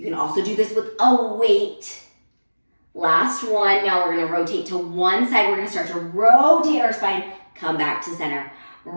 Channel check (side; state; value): both; inverted; correlation -1.00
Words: can also do this with a weight. Last one. Now we're gonna rotate to one side. We're gonna start to rotate our spine, come back to center.